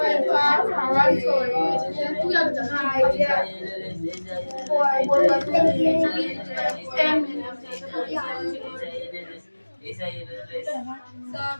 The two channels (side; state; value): both; inverted; correlation -1.00